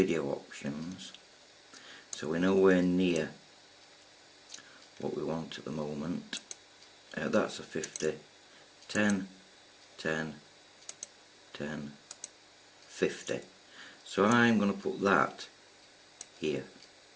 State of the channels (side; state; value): both; identical; correlation 1.00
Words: options, so we're nowhere near what we want at the moment. That's a 50, 10, 10, 10, 50. So I'm going to put that here,